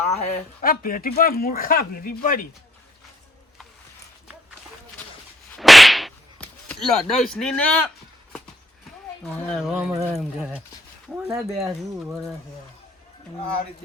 હે આ પેટી પર મૂર્ખા ભેરી પડી લડઈશ ની ને આ રીતે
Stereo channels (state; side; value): normal; both; correlation 0.69